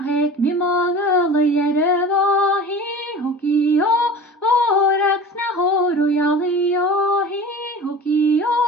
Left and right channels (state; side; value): normal; both; correlation 0.37